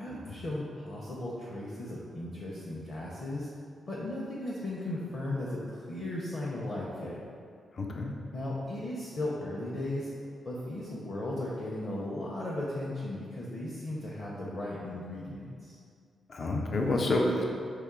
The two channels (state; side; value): normal; both; correlation 0.82